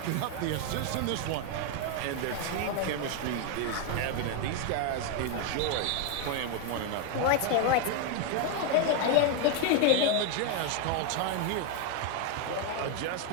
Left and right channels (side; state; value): both; different; correlation 0.01